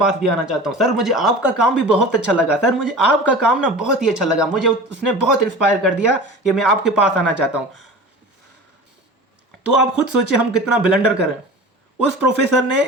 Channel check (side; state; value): both; normal; correlation 0.36